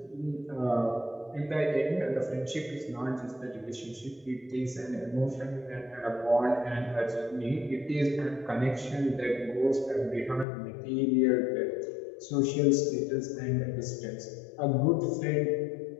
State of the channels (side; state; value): right; drops out; at 10.5 s